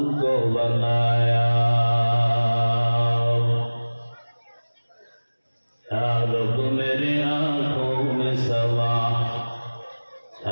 बनाया रब मेरे आँखों में सवा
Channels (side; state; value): both; inverted; correlation -1.00